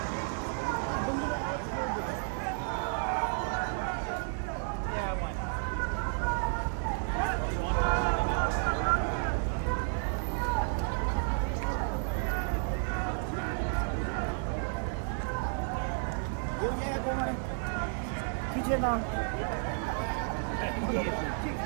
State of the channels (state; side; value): silent; left; 56 dB below the other